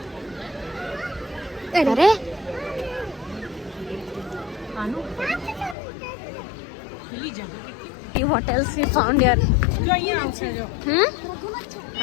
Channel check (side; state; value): right; drops out; at 5.8 s